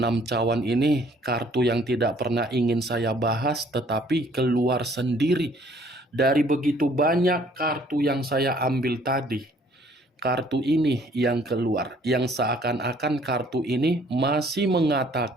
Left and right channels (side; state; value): both; normal; correlation 0.60